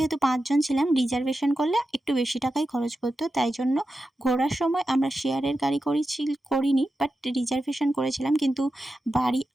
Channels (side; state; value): both; normal; correlation 0.91